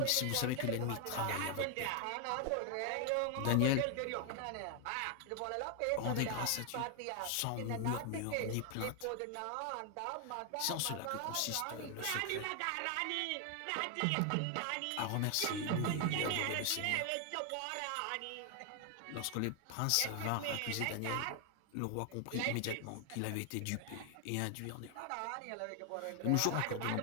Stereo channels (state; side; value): different; both; correlation 0.00